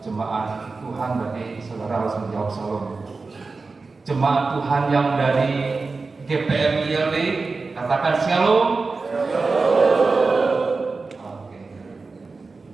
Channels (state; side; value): quieter; left; 4.0 dB